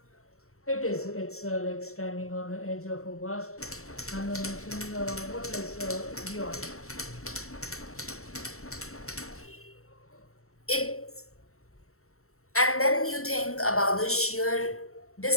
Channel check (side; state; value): right; late; 0.63 ms